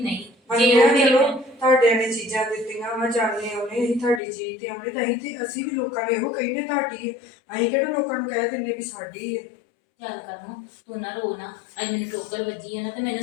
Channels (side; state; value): right; drops out; at 4.2 s